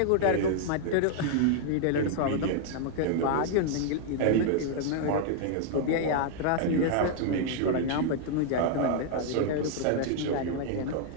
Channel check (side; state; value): both; different; correlation 0.00